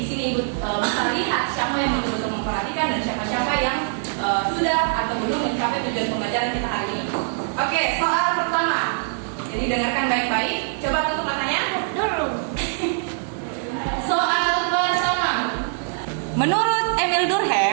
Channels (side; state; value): left; silent; digital silence